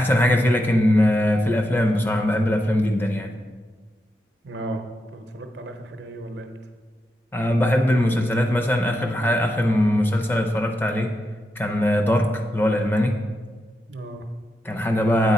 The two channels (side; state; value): both; normal; correlation 0.86